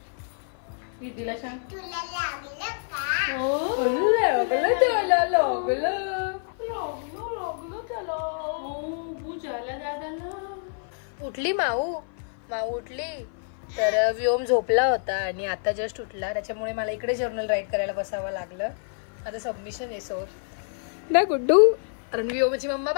दीदीला. सांग तुला लागलं का? लागलं त्याला. लागलं त्याला. बूज आला दादाला. उठली माऊ उठली. तर व्योम झोपला होता आणि आता जस्ट उठला. त्याच्यामुळे मला इकडे जर्नल राईट करायला बसावं लागलं. आता सबमिशन आहे सो ना गुड्डू. कारण व्योमची मम्मा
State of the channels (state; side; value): silent; right; 56 dB below the other